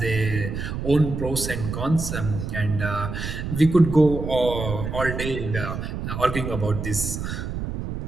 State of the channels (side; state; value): right; noise; rumble, 5 dB below the sound